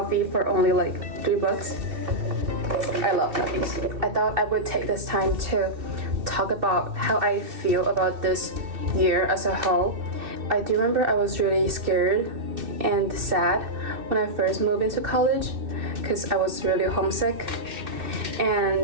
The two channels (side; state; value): left; late; 2.7 ms